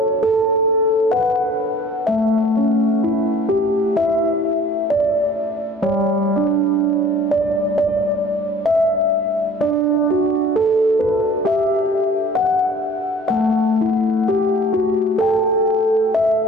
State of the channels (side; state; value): both; normal; correlation 0.50